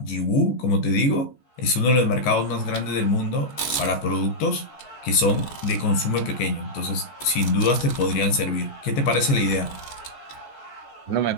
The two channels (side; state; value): right; late; 14 ms